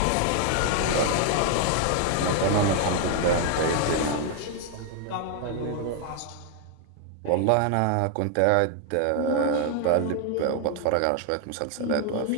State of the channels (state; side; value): different; both; correlation 0.00